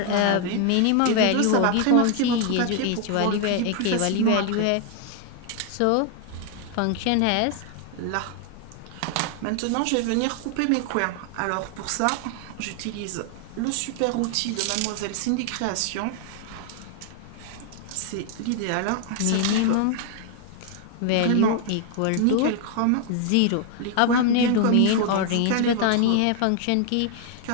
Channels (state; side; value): different; both; correlation 0.00